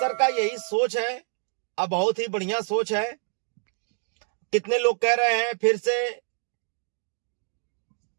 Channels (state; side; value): silent; left; digital silence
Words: का यही सोच है। अब बहुत ही बढ़िया सोच है। कितने लोग कह रहे हैं फिर से